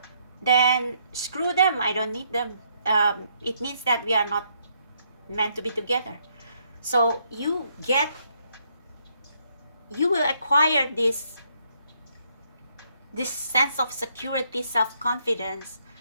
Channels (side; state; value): both; inverted; correlation -0.72